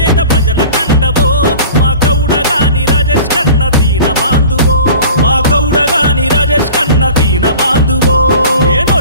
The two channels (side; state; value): both; inverted; correlation -0.42